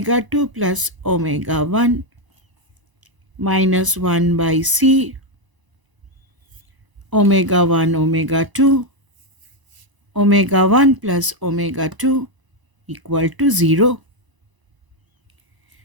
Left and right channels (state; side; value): late; left; 1.0 ms